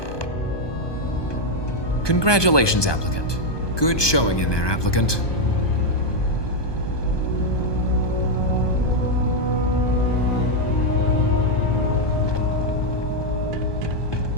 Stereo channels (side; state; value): right; late; 1.2 ms